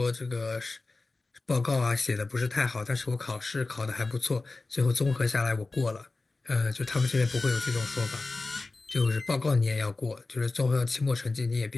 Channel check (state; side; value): quieter; right; 3.5 dB